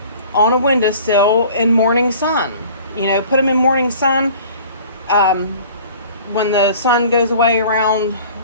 on a windowsill in morning sun. Put them in morning sun when the sun goes away around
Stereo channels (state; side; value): inverted; both; correlation -0.47